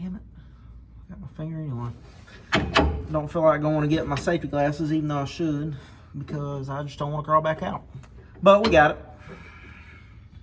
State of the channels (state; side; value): identical; both; correlation 1.00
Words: it. I got my finger anyway. Don't feel like going to get my safety glasses, even though I should, because I just don't want to crawl back out. But we got it.